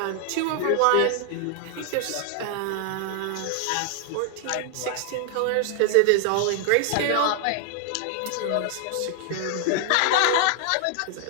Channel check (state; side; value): different; both; correlation 0.00